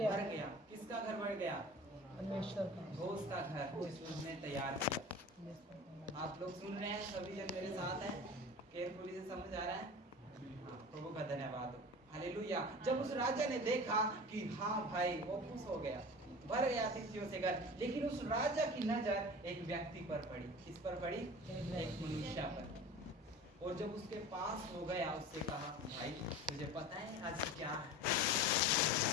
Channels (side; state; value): both; normal; correlation 0.37